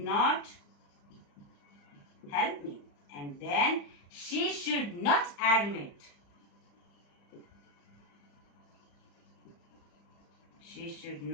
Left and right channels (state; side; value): late; right; 35 ms